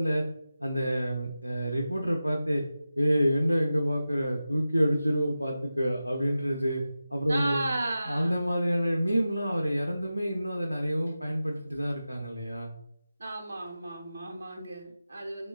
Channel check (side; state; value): both; inverted; correlation -0.93